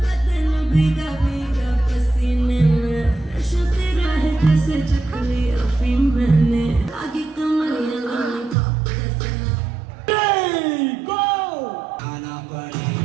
भीगा भीगा पसीने में नशा तेरा है जैसे चख लिया अफीम मैंने आगे कमरिया लॉलीपॉप जैसे आना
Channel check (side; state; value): left; drops out; at 8.6 s